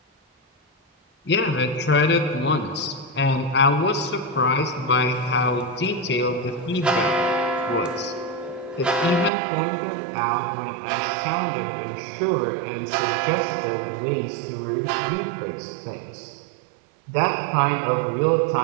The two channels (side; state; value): left; drops out; at 9.3 s